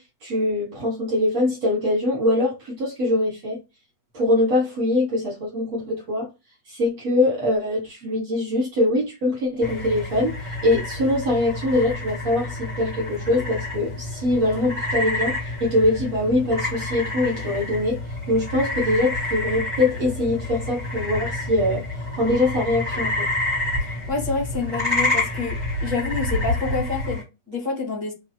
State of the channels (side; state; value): left; late; 8.3 ms